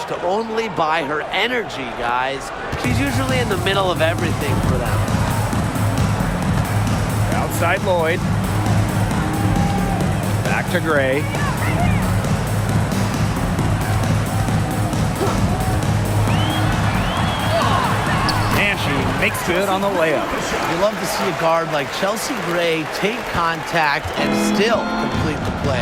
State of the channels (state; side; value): identical; both; correlation 1.00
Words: only by her energy, guys. She's usually in the middle of everything for them. Outside Lloyd. Back to Gray. Makes good on the layup. You love to see a guard like Chelsea Gray take contact and still complete the